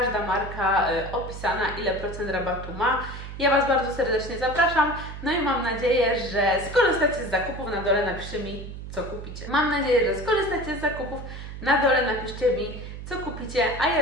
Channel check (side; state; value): right; noise; hum, 10 dB below the sound